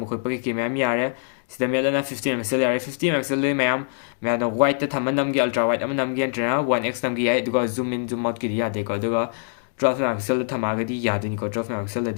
खुद पके की मैम यारे सिदमे लना 15 मेगापिक्सल यारे 50 मेगापिक्सल ले मैम मैं वाइट थम नम की अल्ट्रा वाइट अम नम की एंट्रा 1x नम की है दुको जूम इन जूम आउट की दिया देखो दुको 12 megapixel थमागदी यादनी को 12 megapixel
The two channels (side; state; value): right; silent; digital silence